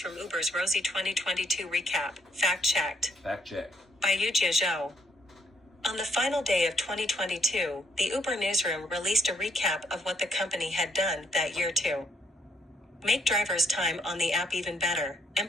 Uber's rosy 2022 recap. Fact-checked. Fact-checked. By Yujia Zhou. On the final day of 2022, the Uber newsroom released a recap of what the company had done that year to make drivers' time on the app even better,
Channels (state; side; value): normal; both; correlation 0.71